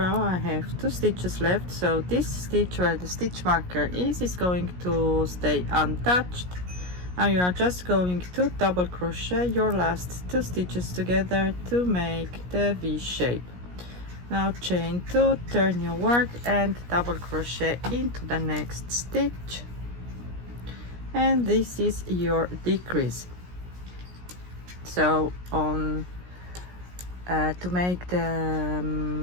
I have 2 stitches left, so this stitch where the stitch marker is going to stay untouched. Now you are just going to double crochet your last 2 stitches together to make the V shape. Now chain 2, turn your work and double crochet into the next stitch, and this is your decrease. So on to make the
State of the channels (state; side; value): late; left; 17 ms